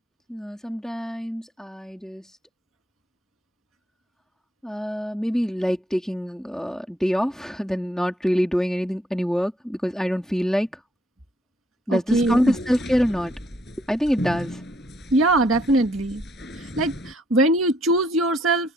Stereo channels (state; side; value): normal; both; correlation 0.68